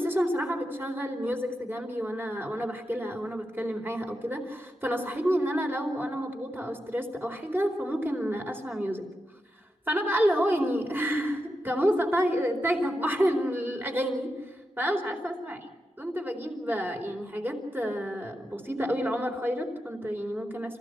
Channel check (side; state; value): both; normal; correlation 0.87